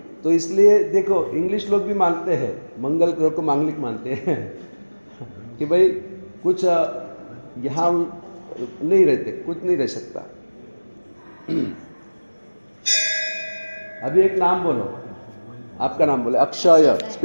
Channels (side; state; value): both; inverted; correlation -1.00